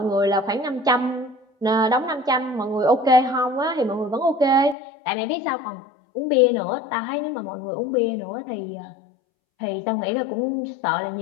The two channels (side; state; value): right; drops out; at 4.8 s